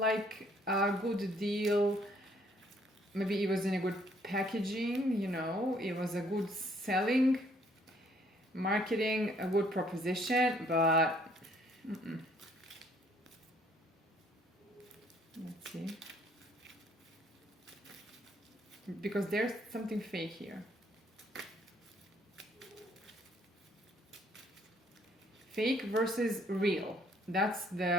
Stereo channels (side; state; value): both; normal; correlation 0.64